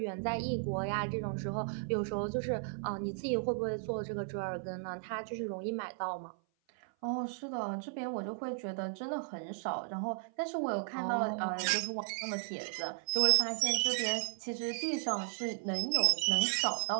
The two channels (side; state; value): left; silent; 54 dB below the other